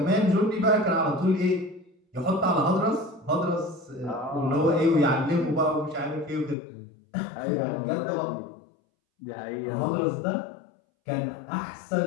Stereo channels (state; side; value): drops out; right; at 6.6 s